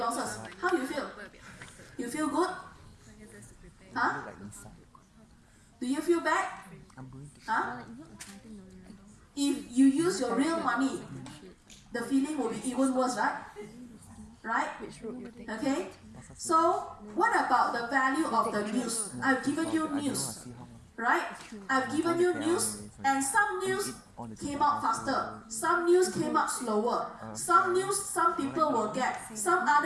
How do you feel? You feel good? Huh? Do you feel bad? Huh? If you use your real money, the feeling will be even worse, right? Right? Okay? So, what about the value of the news? I've given you news, right? I've given you news, and some news came out faster, some news came out slower, some news some people will get, some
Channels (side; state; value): both; identical; correlation 1.00